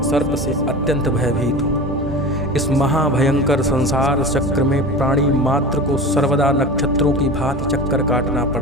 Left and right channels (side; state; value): both; normal; correlation 0.33